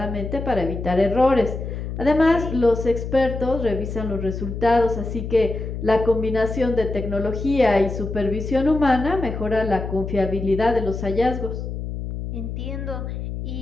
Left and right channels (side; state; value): left; noise; hum, 6 dB below the sound